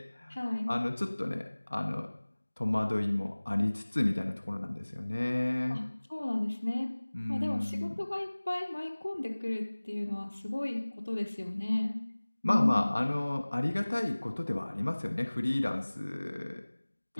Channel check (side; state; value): both; inverted; correlation -1.00